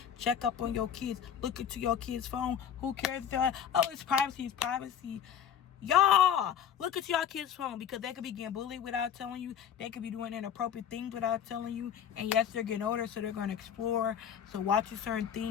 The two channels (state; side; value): quieter; right; 8.8 dB